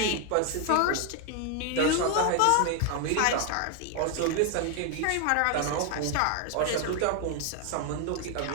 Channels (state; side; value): different; both; correlation 0.01